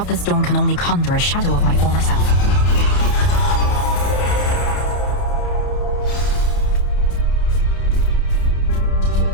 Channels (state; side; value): late; right; 30 ms